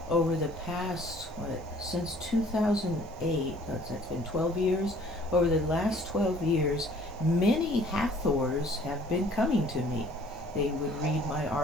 over the past, since 2008, that's been 12 years, over the last 12 years, many Hathors have been coming to me. They would read my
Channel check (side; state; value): both; normal; correlation 0.55